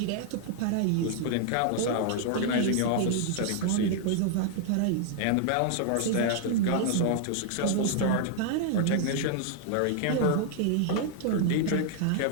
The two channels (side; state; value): both; different; correlation -0.01